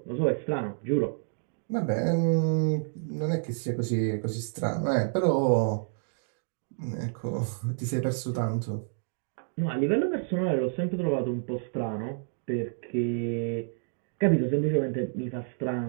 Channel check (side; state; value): left; silent; digital silence